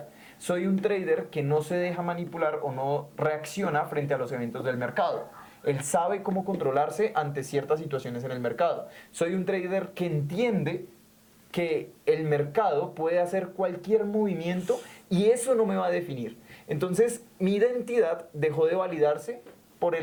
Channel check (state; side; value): identical; both; correlation 1.00